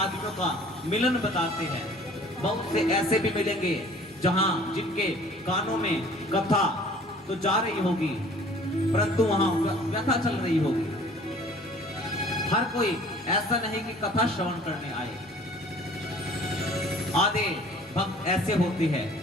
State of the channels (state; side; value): normal; both; correlation 0.51